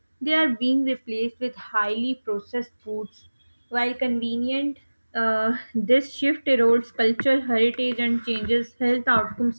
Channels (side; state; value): both; inverted; correlation -1.00